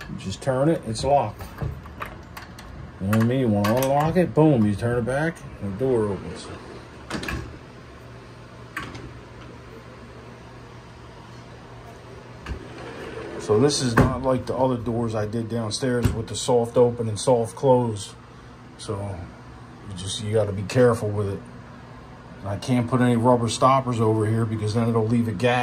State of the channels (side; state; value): both; identical; correlation 1.00